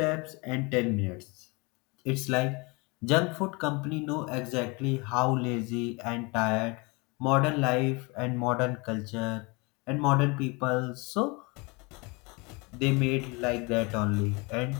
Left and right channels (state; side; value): quieter; right; 27.9 dB